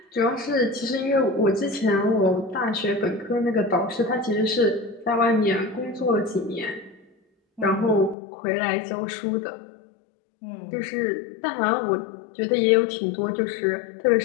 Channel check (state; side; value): drops out; right; at 8.2 s